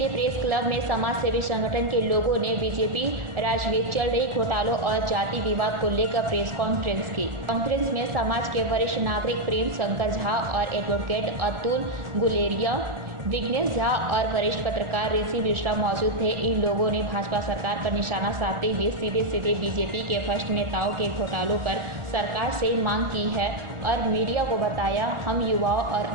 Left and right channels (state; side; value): late; left; 1.4 ms